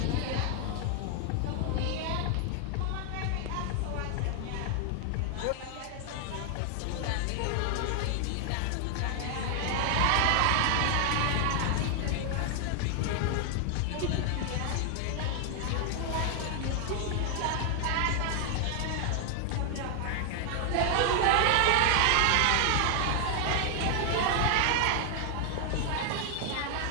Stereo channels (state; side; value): different; both; correlation 0.00